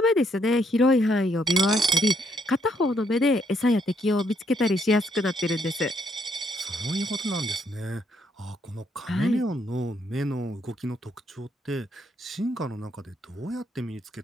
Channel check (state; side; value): normal; both; correlation 0.71